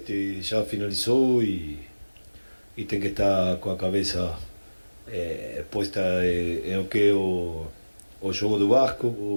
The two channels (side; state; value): both; inverted; correlation -1.00